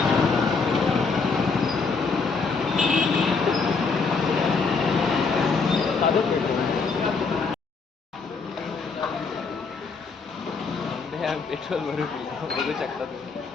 पेट्रोल भरू बघू शकता तुम्ही.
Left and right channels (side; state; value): right; quieter; 4.7 dB